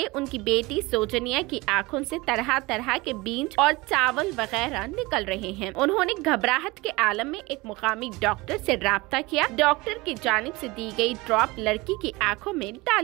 उनकी बेटी सोजनिया की आंखों से तरह तरह के बीज और चावल वगैरह निकल रहे हैं। उन्होंने घबराहट के आलम में एक मुकामी डॉक्टर से राब्ता किया। डॉक्टर की जानिब से दी गई ड्रॉप लड़की की आंखों में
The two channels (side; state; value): left; quieter; 22.7 dB